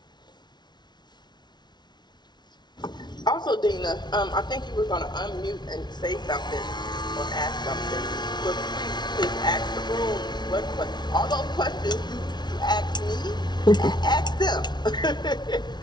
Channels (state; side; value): late; right; 0.20 ms